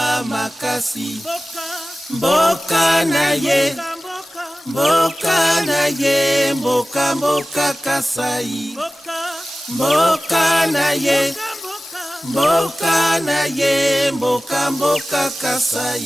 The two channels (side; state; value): both; normal; correlation 0.97